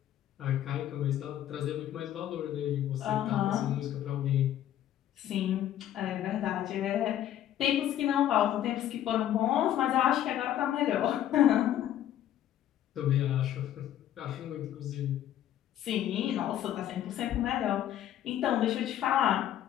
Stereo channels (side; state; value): right; quieter; 11.7 dB